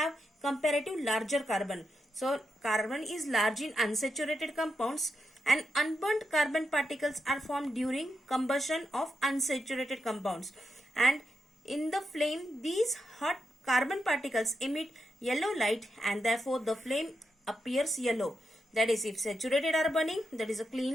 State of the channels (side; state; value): both; normal; correlation 0.85